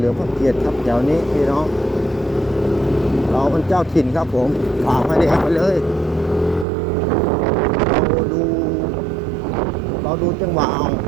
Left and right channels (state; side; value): drops out; left; at 6.7 s